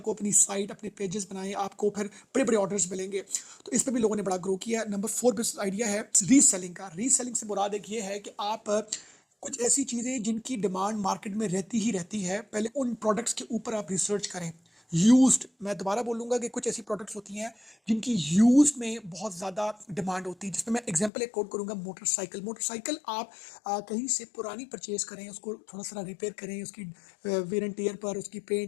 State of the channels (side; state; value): right; drops out; at 21.1 s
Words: अपनी साइट, अपने पेजेस बनाएं, आपको फिर बड़े बड़े ऑर्डर्स मिलेंगे। तो इस पर भी लोगों ने बड़ा ग्रो किया है। नंबर 4 बिजनेस आइडिया है रीसेलिंग का। रीसेलिंग से मुराद एक ये है कि आप कुछ ऐसी चीज़ें जिनकी डिमांड मार्केट में रहती ही रहती है, पहले उन प्रोडक्ट्स के ऊपर आप रिसर्च करें। यूज्ड, मैं दोबारा बोलूँगा कि कुछ ऐसी प्रोडक्ट्स होती हैं जिनकी यूज़ में बहुत ज़्यादा डिमांड होती है, जिसमें मैं एग्जांपल एक कोट करूँगा, मोटरसाइकिल। मोटरसाइकिल आप कहीं से पुरानी परचेज़ करें, उसको थोड़ा सा रिपेयर करें, उसकी वेयर एंड टियर पर, उसकी